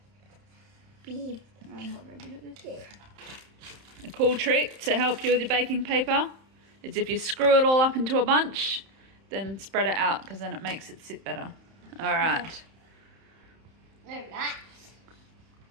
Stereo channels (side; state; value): left; late; 31 ms